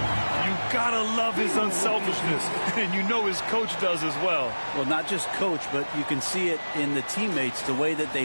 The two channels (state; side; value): inverted; both; correlation -1.00